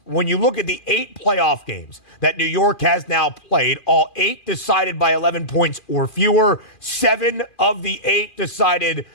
When you look at the 8 playoff games that New York has now played, all 8 decided by 11 points or fewer, 7 of the 8 decided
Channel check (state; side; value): late; right; 2.5 ms